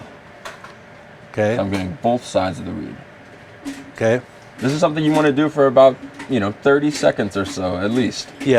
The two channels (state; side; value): identical; both; correlation 1.00